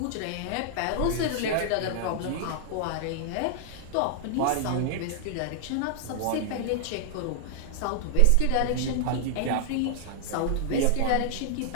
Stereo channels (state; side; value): different; both; correlation 0.00